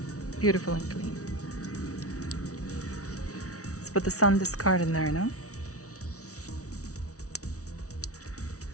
beautiful and clean. Let's put the SanDisk card in there now.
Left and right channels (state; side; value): late; right; 0.66 ms